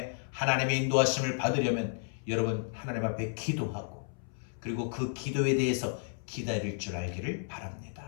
하나님의 인도하심을 받으려면 여러분 하나님 앞에 기도하고 그리고 그 기도에 대해서 기다릴 줄 알기를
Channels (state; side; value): silent; right; 56 dB below the other